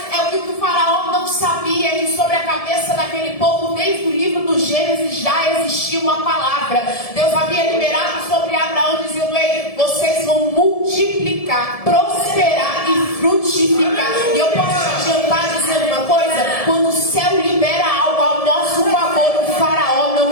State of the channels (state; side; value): late; right; 1.7 ms